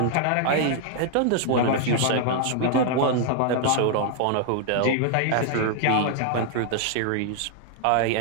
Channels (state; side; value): different; both; correlation 0.00